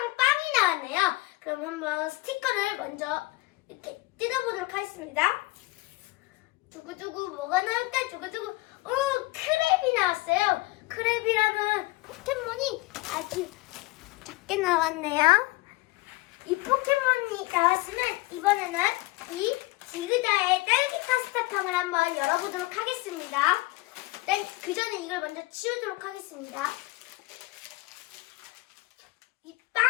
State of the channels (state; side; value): quieter; right; 21.2 dB